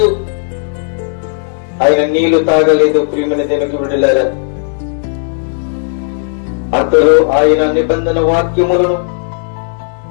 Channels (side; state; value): right; silent; digital silence